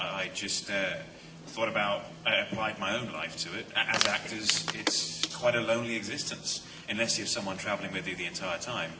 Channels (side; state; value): both; identical; correlation 1.00